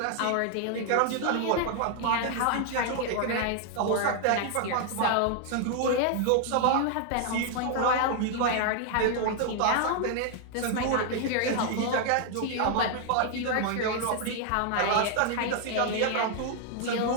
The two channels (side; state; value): both; different; correlation 0.00